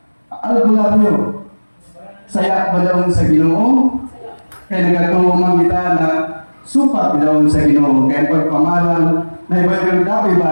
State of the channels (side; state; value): both; inverted; correlation -1.00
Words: albularyo, saya balawon sa Ginoo, kaya nagatuman kita na supat balawon sa Ginoo, kaya pagpamaral na Bible dapat